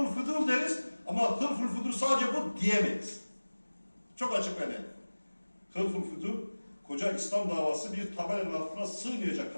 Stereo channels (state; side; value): inverted; both; correlation -1.00